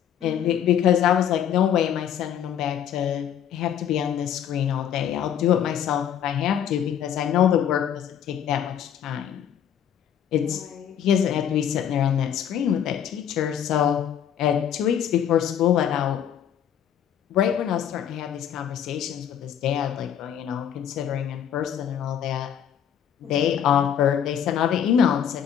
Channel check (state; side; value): quieter; right; 9.3 dB